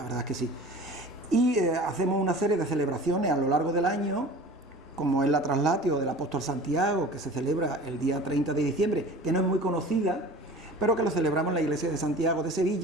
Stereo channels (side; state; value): both; normal; correlation 0.40